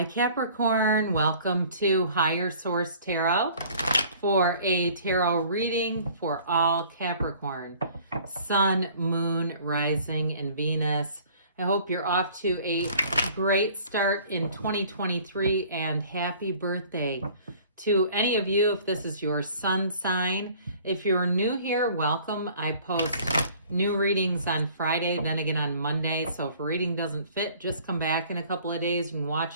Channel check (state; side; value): inverted; both; correlation -0.52